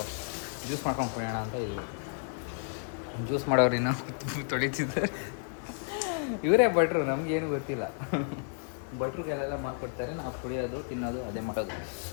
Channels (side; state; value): right; silent; 57 dB below the other